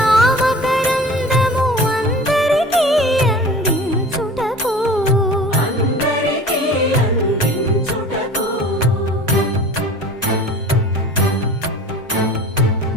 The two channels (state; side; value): normal; both; correlation 0.41